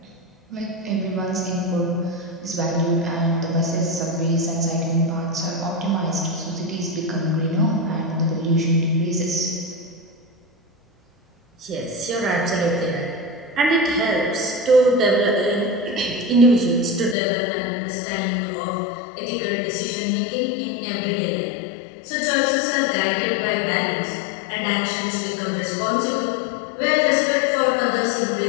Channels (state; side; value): drops out; right; at 17.2 s